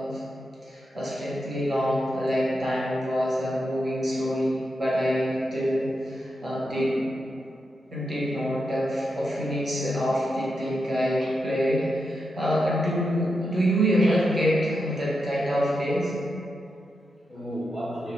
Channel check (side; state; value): both; normal; correlation 0.86